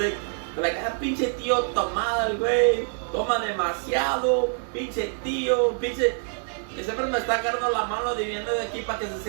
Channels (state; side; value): silent; left; 56 dB below the other